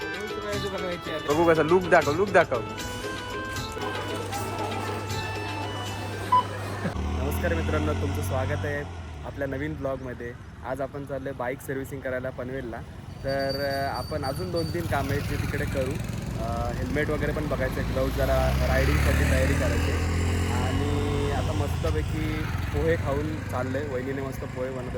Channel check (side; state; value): both; identical; correlation 1.00